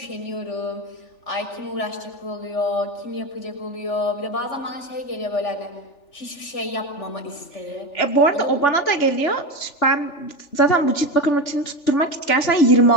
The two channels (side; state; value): right; late; 3.4 ms